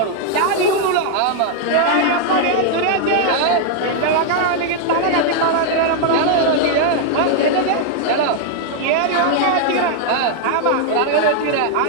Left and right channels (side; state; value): both; different; correlation 0.00